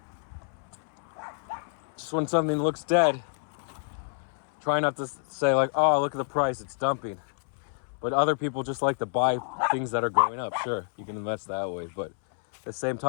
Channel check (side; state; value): right; silent; 59 dB below the other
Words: just when something looks dead, try not to say like, oh, look at the price, it's dumping. But other people just like to buy things that are going up. Sure, you can invest that way. But at the same